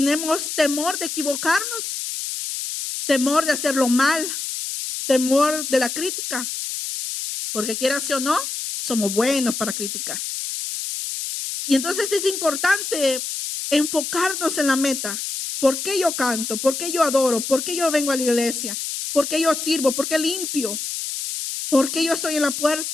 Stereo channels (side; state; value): left; noise; hiss, 5 dB below the sound